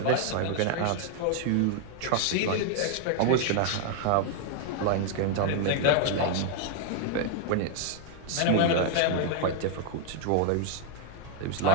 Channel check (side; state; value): both; different; correlation 0.00